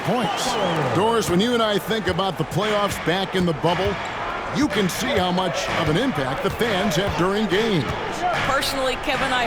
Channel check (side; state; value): both; identical; correlation 1.00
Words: points. Doris, when you and I think about the playoffs back in the bubble, you can see how much of an impact the fans have during games. Personally, Kevin, I